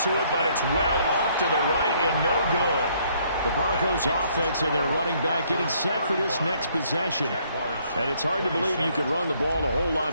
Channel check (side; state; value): both; inverted; correlation -0.66